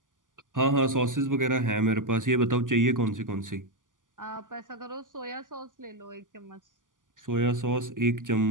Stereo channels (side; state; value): left; late; 0.88 ms